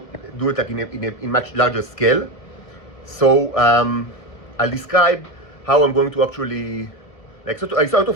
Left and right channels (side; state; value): right; late; 1.5 ms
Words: do it like in much larger scale. So I'll describe how I'm going to actually, like, sort